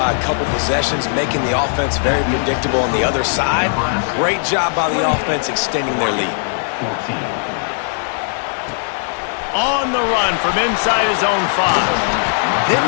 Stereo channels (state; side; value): silent; right; digital silence